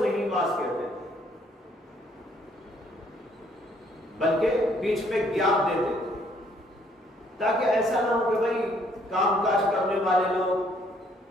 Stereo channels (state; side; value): normal; both; correlation 0.65